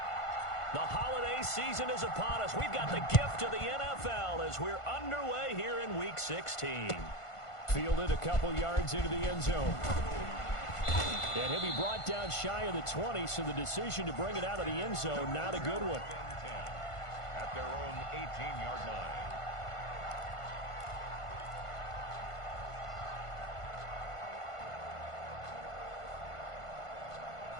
The holiday season is upon us. We've got the gift of the NFL as we're underway here in Week 16. Fielded a couple yards into the end zone. And he'll be brought down shy of the 20, so the decision to bring it out of the end zone, not a good one. At their own 18-yard line.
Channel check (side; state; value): right; late; 1.5 ms